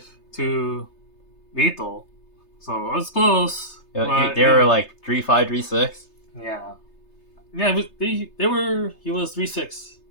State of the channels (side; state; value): right; late; 3.3 ms